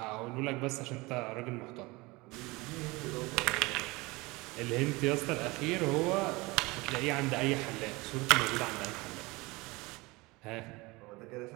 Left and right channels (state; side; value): quieter; left; 23.4 dB